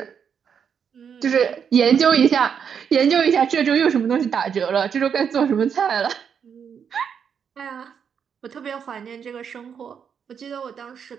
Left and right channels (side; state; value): left; quieter; 7.3 dB